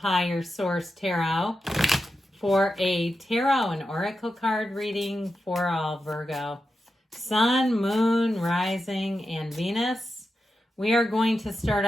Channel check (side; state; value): both; normal; correlation 0.89